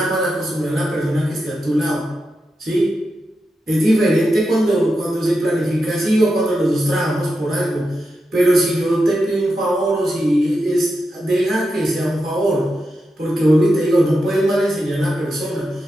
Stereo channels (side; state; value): both; normal; correlation 0.88